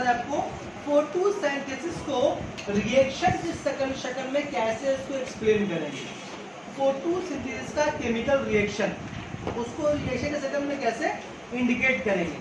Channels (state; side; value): identical; both; correlation 1.00